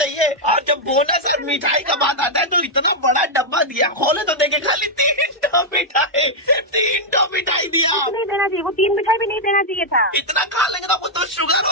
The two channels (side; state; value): both; normal; correlation -0.03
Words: और जब बोनस और मिठाई का बात आता है तो इतना बड़ा डब्बा दिया, खोले तो देखे खाली 3 टो मिठाई, 3 टो मिठाई दिया। नहीं देना चाहिए, वो 3 मिठाई भी नहीं देना चाहिए था। इतना खा लेंगे ना वो तो शुगर